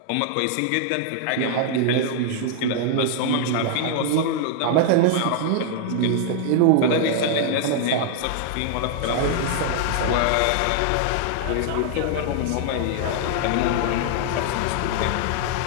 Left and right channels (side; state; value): both; different; correlation 0.00